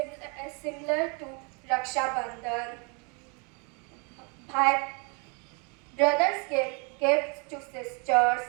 similar to Raksha Bandhan. Brothers give gifts to sisters,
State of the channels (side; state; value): left; quieter; 34.1 dB